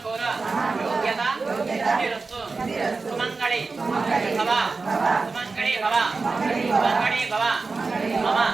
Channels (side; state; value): left; quieter; 4.1 dB